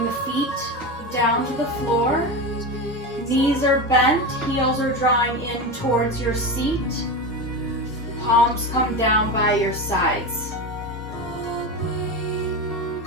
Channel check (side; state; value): both; normal; correlation 0.21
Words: the feet down to the floor. Knees are bent, heels are drawing in towards your seat. Palms come down by your sides.